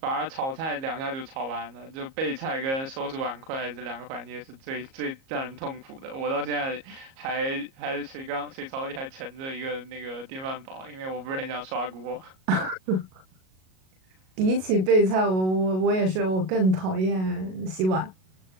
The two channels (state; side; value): late; left; 37 ms